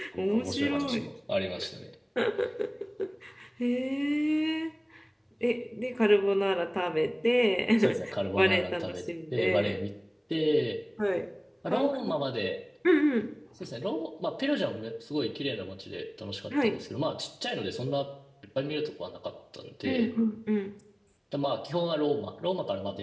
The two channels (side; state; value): both; identical; correlation 1.00